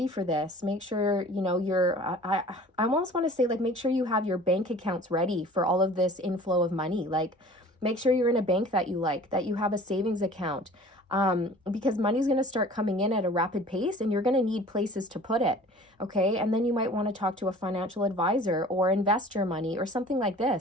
for this. Make sure, you know, I almost want to say like, make sure you have your bank accounts ready for all of this inflow of money. Like, make sure you're in a bank that you like, that you have a savings account, because money's going to start coming in at a rapid pace and you're going to need places to put it. Okay. And then you might want to talk to a financial advisor or invest your money or something like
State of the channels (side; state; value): both; normal; correlation 0.46